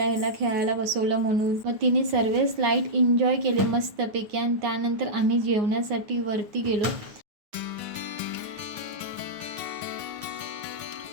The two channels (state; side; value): late; left; 9.6 ms